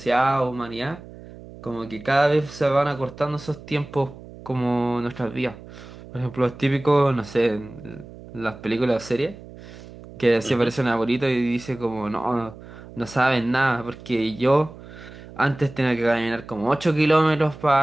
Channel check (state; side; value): noise; right; hum, 17 dB below the sound